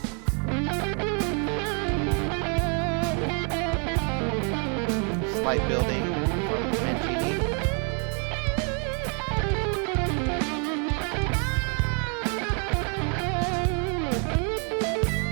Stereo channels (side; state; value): left; quieter; 39.0 dB